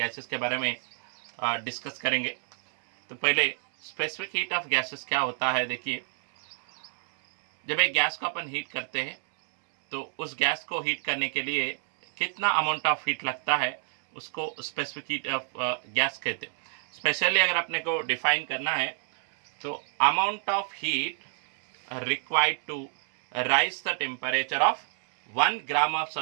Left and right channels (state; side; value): silent; left; 58 dB below the other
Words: के बारे में डिस्कस करेंगे। तो पहले स्पेसिफिक हीट ऑफ गैसेस क्या होता है। देखिए, जब एक गैस को अपन हीट करते हैं तो उस गैस को हीट करने के लिए कितना अमाउंट ऑफ हीट लगता है उसको स्पेसिफिक हीट ऑफ गैस कहते हैं। स्पेशली अगर अपने को डिफाइन करना है तो amount of heat required to rise the temperature of 1 gram of